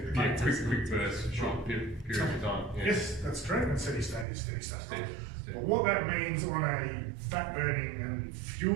burst, short period of time. Yeah. Yes, that's correct. And steady state is steady state. But what that means on a fat burning and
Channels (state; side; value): drops out; left; at 4.2 s